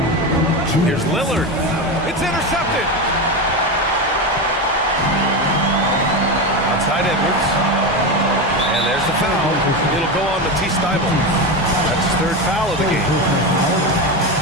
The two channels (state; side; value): normal; both; correlation 0.17